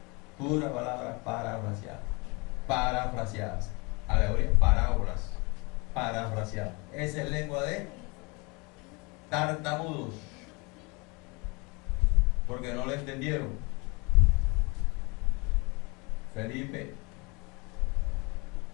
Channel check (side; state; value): right; quieter; 28.3 dB